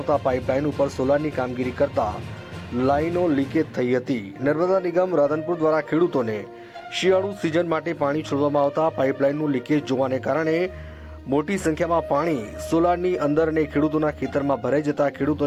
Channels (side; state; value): both; identical; correlation 1.00